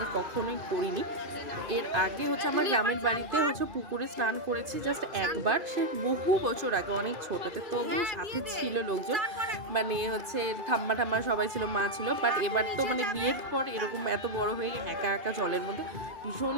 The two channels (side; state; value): left; late; 2.5 ms